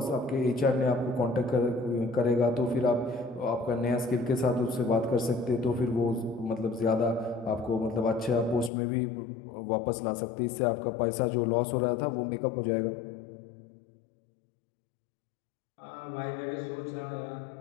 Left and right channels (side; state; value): right; drops out; at 8.7 s